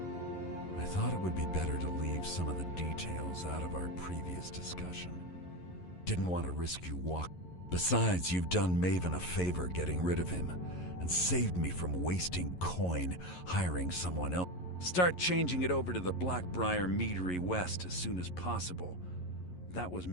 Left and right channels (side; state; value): right; late; 11 ms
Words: I thought it would be better to leave some of the details out of our previous discussion. Didn't want to risk you Besides, you've done Maven a favor getting rid of him, and saved me from wasting coin hiring someone else. Start changing it over to the Blackbriar Meadery West as soon as possible. That was